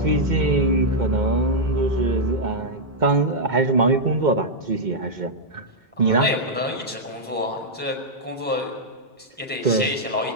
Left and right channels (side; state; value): both; normal; correlation -0.05